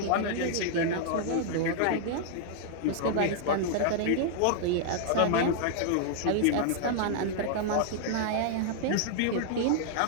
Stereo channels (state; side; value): different; both; correlation -0.01